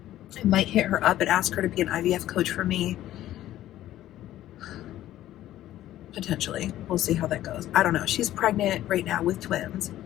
I might hit her up and ask her to be an IVF coach for me. Potentially. We'll see how that goes. I don't know. She's pregnant right now with twins,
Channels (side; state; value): right; quieter; 13.6 dB